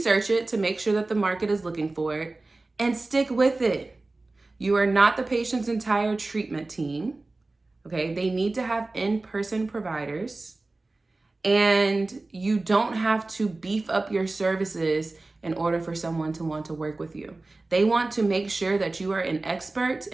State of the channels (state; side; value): quieter; left; 3.2 dB